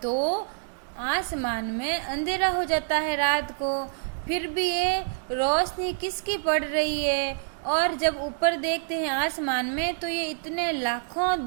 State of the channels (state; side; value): silent; left; digital silence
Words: तो आसमान में अंधेरा हो जाता है रात को, फिर भी ये रोशनी किसकी पड़ रही है? और जब ऊपर देखते हैं आसमान में तो ये इतने लाखों